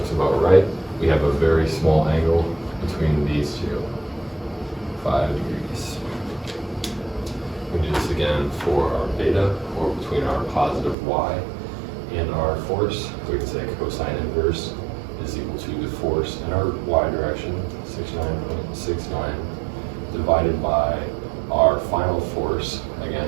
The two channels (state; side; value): drops out; left; at 11.0 s